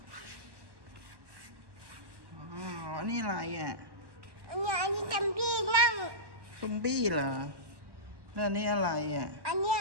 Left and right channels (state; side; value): late; left; 1.1 ms